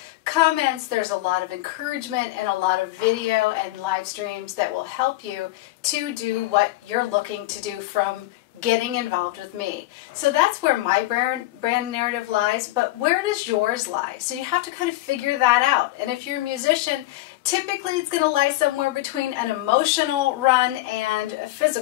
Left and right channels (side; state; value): right; quieter; 17.6 dB